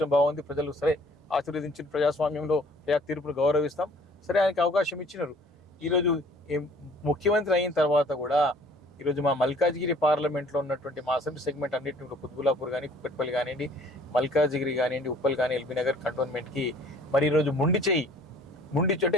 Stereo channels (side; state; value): both; normal; correlation 0.55